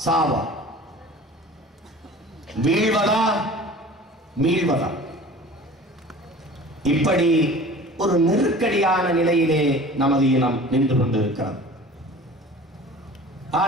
சாவா, வீழ்வதா மீழ்வதா, இப்படி ஒரு நெருக்கடியான நிலையிலே நமது இனம் நின்று கொண்டிருக்கிறது.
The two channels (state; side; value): normal; both; correlation 0.42